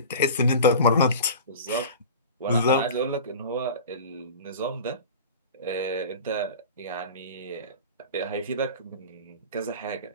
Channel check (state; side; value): inverted; both; correlation -0.35